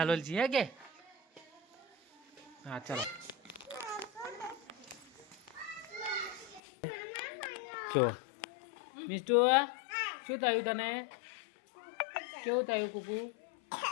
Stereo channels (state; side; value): drops out; right; at 6.6 s